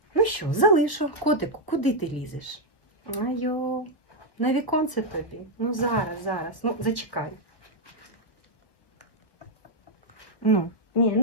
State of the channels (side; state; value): right; late; 1.1 ms